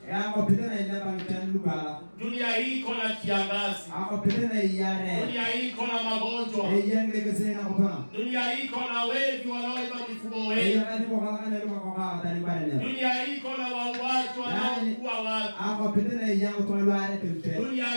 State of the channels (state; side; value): inverted; both; correlation -1.00